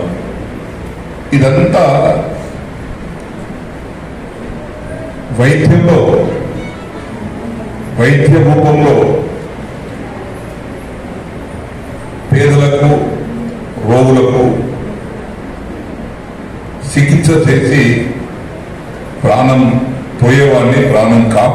ఇదంతా వైద్యంలో, వైద్య రూపంలో పేదలకు, రోగులకు చికిత్స చేసి ప్రాణం పోయేవాడిని ప్రాణం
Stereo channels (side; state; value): both; identical; correlation 1.00